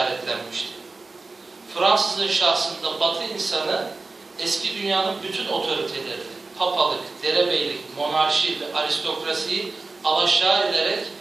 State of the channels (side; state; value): left; quieter; 3.7 dB